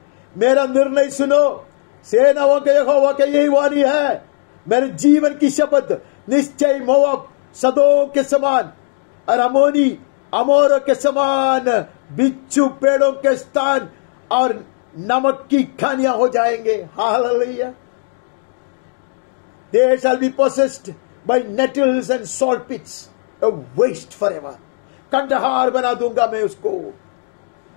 मेरा निर्णय सुनो, सेनाओं के यहोवा के यही वाणी है, मेरे जीवन की शपथ, निश्चय मोआब सदोम के समान और अमोर के समान बिच्छू पेड़ों के स्थान और नमक की खानियां हो जाएंगे। Hallelujah. They shall be possessed by nettles and salt pits, a waste forever. Kandahar बना दूंगा मैं उसको।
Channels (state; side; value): silent; right; digital silence